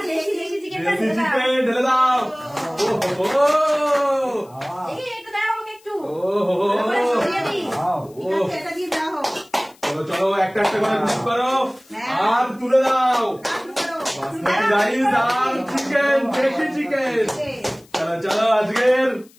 দেশি চিকেন ঢেলে দাও। দেখি একটু দাও আমাকে একটু। চলো চলো একটা একটা করে মিক্স করো আর তুলে দাও। বাসমতি রাইস আর চিকেন, দেশি চিকেন। চলো চলো আজকের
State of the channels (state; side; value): noise; left; hiss, 28 dB below the sound